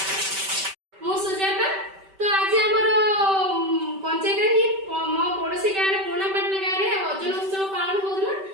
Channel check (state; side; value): late; left; 5.2 ms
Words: मु सुजाता तो आज हमर पंचायत ही मो पड़ोसी गाँव रे पुणापाटना गाँव रे ओजन उत्सव पालन होदला